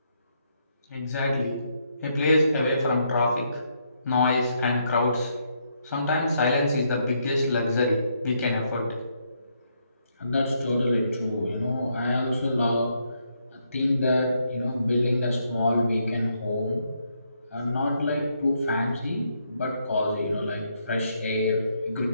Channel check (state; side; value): inverted; both; correlation -0.76